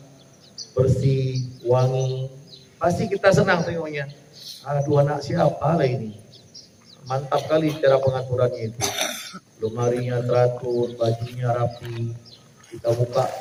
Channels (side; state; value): both; identical; correlation 1.00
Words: bersih, wangi. Pasti kita senang tengoknya. Aduh, anak siapa lah ini. Mantap kali cara pengaturannya itu. Lemarinya teratur, bajunya rapi. Kita